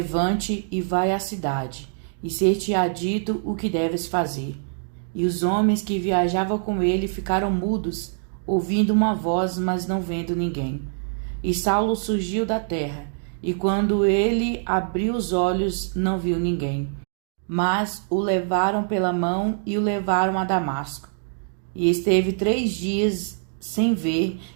e vai à cidade, e ser-te-á dito o que deves fazer. E os homens que viajavam com ele ficaram mudos, ouvindo uma voz, mas não vendo ninguém. E Saulo surgiu da terra, e quando ele abriu os olhos, não viu ninguém. Mas o levaram pela mão e o levaram a Damasco. E esteve 3 dias sem ver,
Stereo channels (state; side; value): silent; left; digital silence